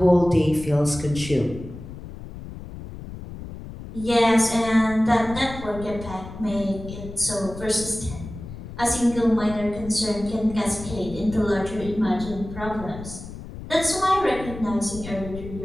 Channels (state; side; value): noise; left; rumble, 12 dB below the sound